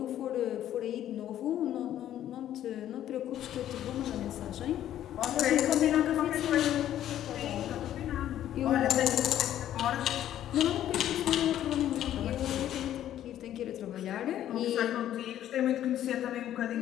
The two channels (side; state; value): right; quieter; 11.7 dB